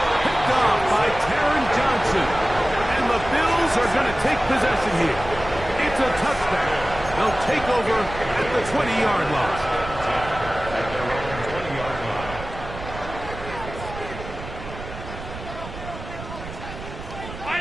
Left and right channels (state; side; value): noise; right; rumble, 11 dB below the sound